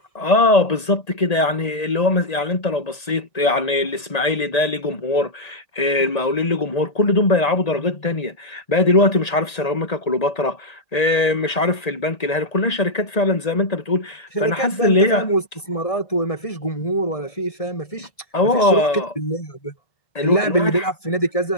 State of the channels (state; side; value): late; right; 1.8 ms